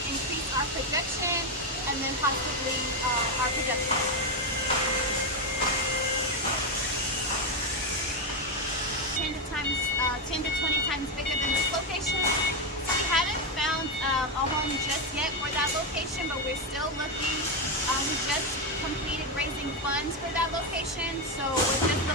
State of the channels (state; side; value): normal; both; correlation 0.07